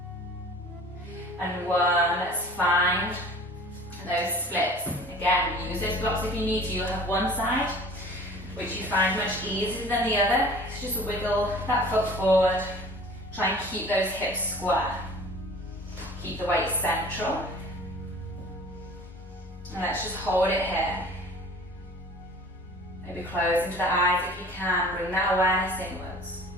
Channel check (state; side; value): normal; both; correlation 0.45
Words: and 1. Let's find those splits. Again, use those blocks if you need to. You'll have one side which you find much easier than the other. So just wiggle that foot forward. Try and keep those hips square. Keep the weight central. And let's just hold it here. Maybe close into the eyes if you can. Bring that awareness inwards.